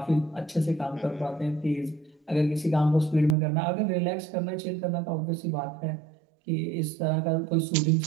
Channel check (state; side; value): drops out; left; at 3.4 s